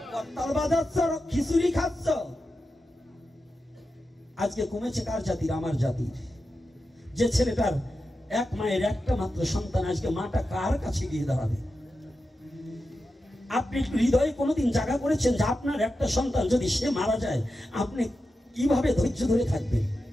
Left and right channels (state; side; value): normal; both; correlation 0.90